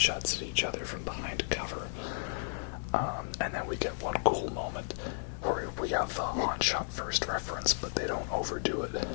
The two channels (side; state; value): right; silent; digital silence